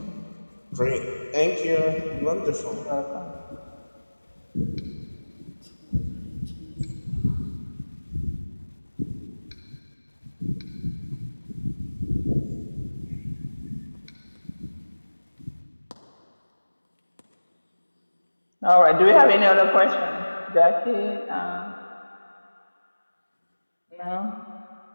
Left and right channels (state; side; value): inverted; both; correlation -1.00